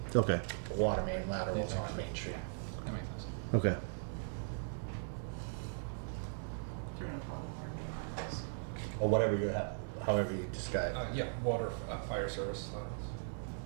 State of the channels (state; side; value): silent; left; digital silence